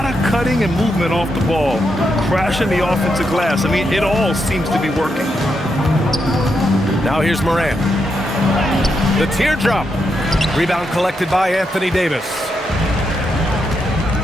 of cutting and movement off the ball, crashing the offensive glass. I mean, it all seems to be working. Now here's Morant. The teardrop. Rebound collected by Anthony Davis.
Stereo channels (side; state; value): both; normal; correlation 0.82